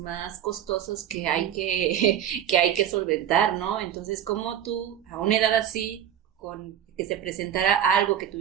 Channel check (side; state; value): left; quieter; 10.1 dB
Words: costosos que hay que solventar, ¿no? Entonces, ¿cómo tú, a una edad así, con que se presentara algo que